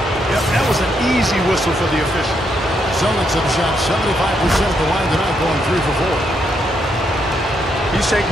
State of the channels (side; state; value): both; normal; correlation 0.77